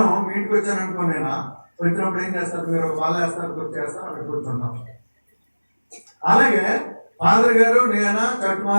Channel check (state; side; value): inverted; both; correlation -1.00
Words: మీ ఇంటికి వచ్చాను అనుకోనేనా, వచ్చినప్పుడు ఏం చేస్తారు, మీరు వాళ్ళు వేస్తారు, కూర్చేస్తారు, అక్కడ కూర్చుంటాం. అలాగే ఫాదర్ గారు, నేను,